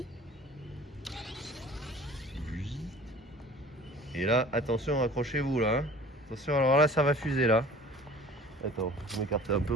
Et là, attention, accrochez-vous là. Hein. Attention, alors là, ça va fuser là. Attends, je m'écarte un peu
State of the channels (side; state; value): both; normal; correlation 0.46